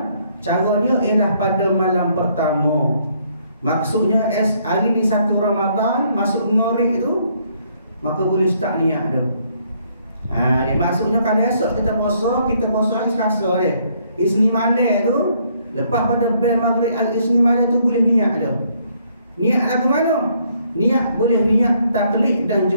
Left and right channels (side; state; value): both; inverted; correlation -0.68